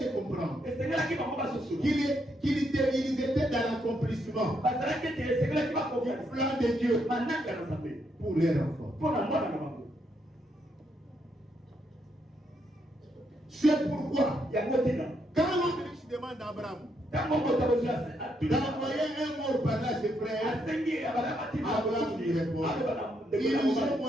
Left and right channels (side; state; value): both; normal; correlation 0.77